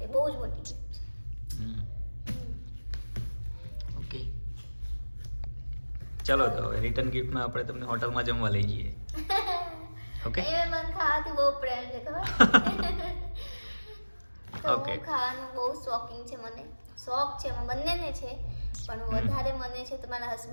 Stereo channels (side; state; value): both; inverted; correlation -1.00